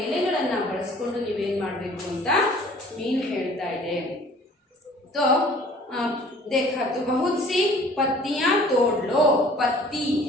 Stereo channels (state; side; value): normal; both; correlation 0.51